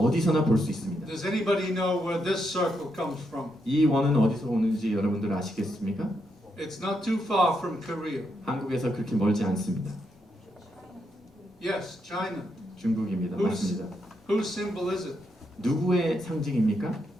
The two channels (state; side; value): normal; both; correlation 0.80